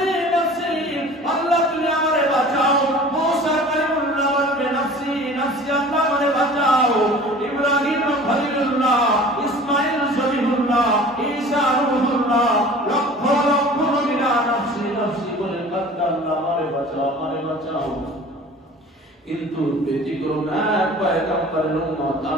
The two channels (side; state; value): both; normal; correlation 0.44